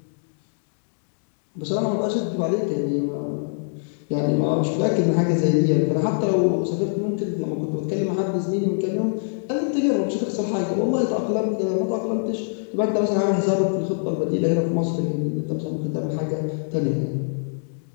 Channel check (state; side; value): silent; right; digital silence